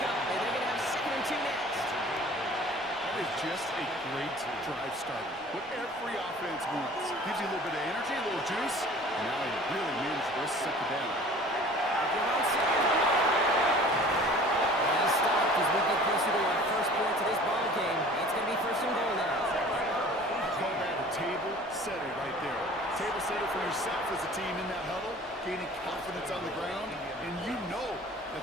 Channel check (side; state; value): both; normal; correlation 0.46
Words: and they're going to have 2nd and 2 next. That is just a great drive starter. What every offense wants. Gives you a little bit of energy, a little juice, and now you really manage the rest of 2nd down. They're on 2nd. He's stopped as we get closer to our first point to this ball game. It's going to be 1st and goal now. Call that a table setter right there. Table setter for yourself as a team in that huddle, gaining confidence on the ground, and you know